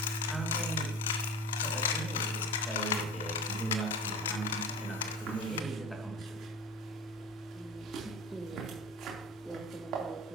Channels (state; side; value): normal; both; correlation 0.34